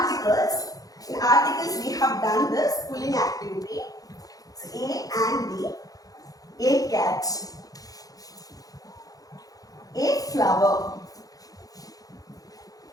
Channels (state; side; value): late; right; 0.18 ms